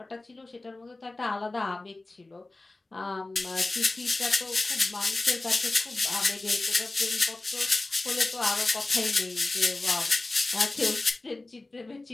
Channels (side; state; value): right; quieter; 3.0 dB